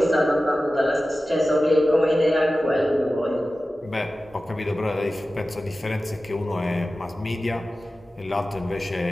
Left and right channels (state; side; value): normal; both; correlation 0.95